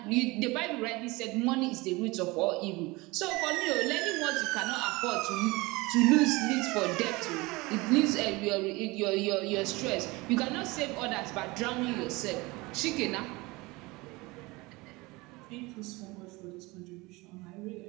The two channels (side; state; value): left; quieter; 23.1 dB